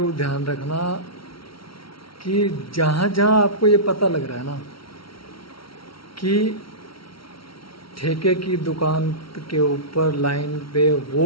ध्यान रखना कि जहां जहां आपको ये पता लग रहा है ना कि ठेके की दुकान के ऊपर लाइन पे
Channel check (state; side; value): late; right; 0.74 ms